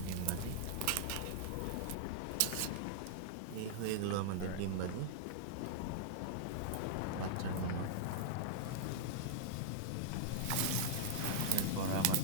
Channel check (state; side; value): different; both; correlation -0.01